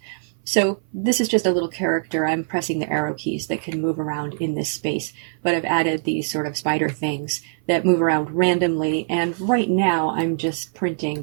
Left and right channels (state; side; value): silent; left; 55 dB below the other